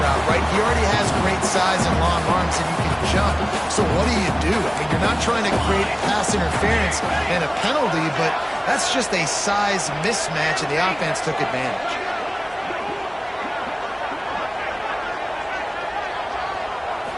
right? He already has great size and long arms, and he can jump. So what do? I mean, you're not trying to create pass interference and a penalty, but that's just a size mismatch, and the offense took advantage.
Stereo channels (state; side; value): identical; both; correlation 1.00